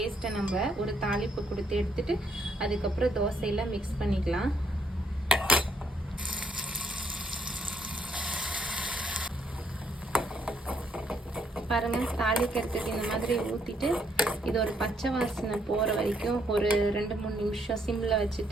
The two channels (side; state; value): both; normal; correlation 0.71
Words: நம்ம ஒரு தாளிப்பு கொடுத்து எடுத்துட்டு அதுக்கப்புறம் தோசையில் மிக்ஸ் பண்ணிக்கலாம். பாருங்கள், தாளிக்கிறதுக்கு இந்த மாதிரி ஊற்றிட்டு இது ஒரு பச்சை வாசனை போகிற வரைக்கும் ஒரு 2-3 நிமிஷம் சிம்மில்